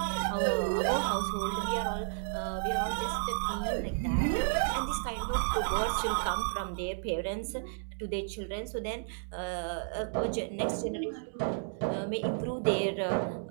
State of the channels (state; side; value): silent; left; digital silence